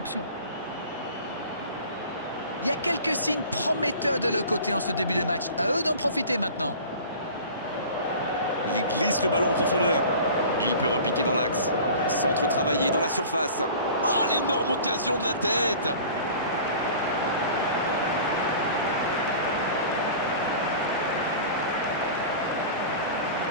Il y a quelques signes prometteurs de leur côté en ce début de match. À eux d'en profiter maintenant. Il glisse le ballon en profondeur. Il peut repiquer dans l'axe. Centre travaillé dans la surface. Oh, l'énorme occasion de la tête.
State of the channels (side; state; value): both; inverted; correlation -0.41